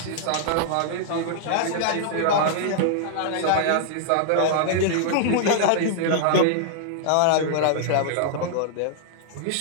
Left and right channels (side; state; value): both; different; correlation -0.01